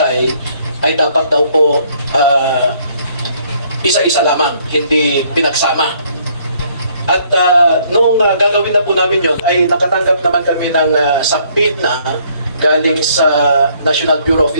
ay dapat daw po isa-isa lamang, hindi pinagsama. At noong gagawin na po namin yon ay nakatanggap naman kami ng subpoena galing sa National Bureau of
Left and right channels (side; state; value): both; inverted; correlation -0.64